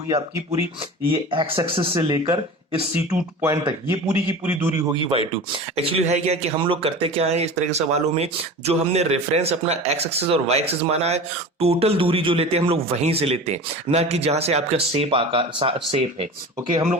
आपकी पूरी, ये एक्स एक्सिस से लेकर इस C2 पॉइंट तक ये पूरी की पूरी दूरी होगी y2। एक्चुअली है क्या कि हम लोग करते क्या है इस तरह के सवालों में, जो हमने रेफरेंस अपना एक्स एक्सिस और वाई एक्सिस माना है, टोटल दूरी जो लेते हैं हम लोग वहीं से लेते हैं, ना कि जहां से आपका शेप आकार शेप है। ओके, हम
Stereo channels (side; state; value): both; normal; correlation 0.34